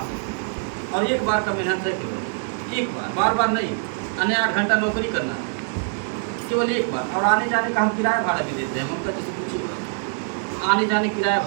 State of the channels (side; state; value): left; silent; 58 dB below the other